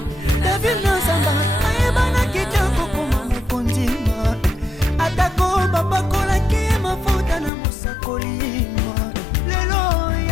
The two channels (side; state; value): right; drops out; at 7.5 s